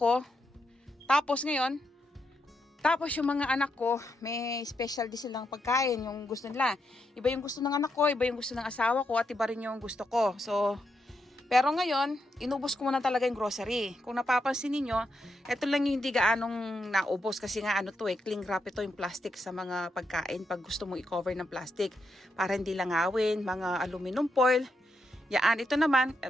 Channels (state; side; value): normal; both; correlation 0.82